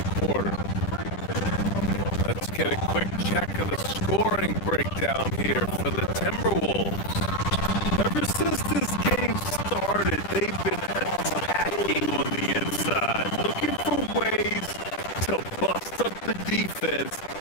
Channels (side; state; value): right; late; 10 ms